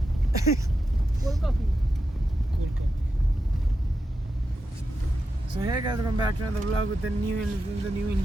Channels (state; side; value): normal; both; correlation 0.88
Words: Cold coffee. So hey guys, welcome back to another vlog with the new